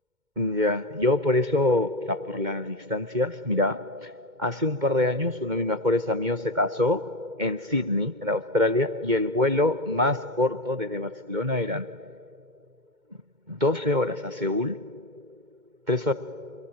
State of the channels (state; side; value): late; left; 2.2 ms